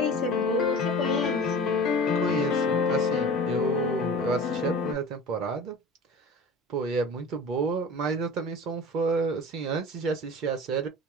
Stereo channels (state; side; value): normal; both; correlation 0.37